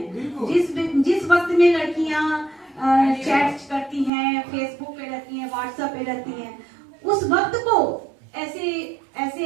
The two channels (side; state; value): left; drops out; at 4.1 s